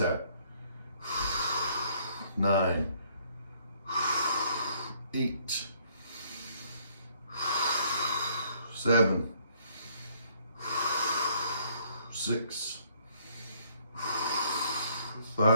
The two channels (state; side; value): inverted; both; correlation -0.65